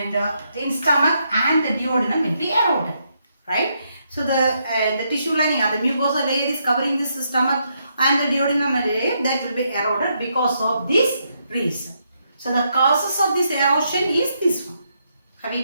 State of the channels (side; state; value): both; inverted; correlation -0.78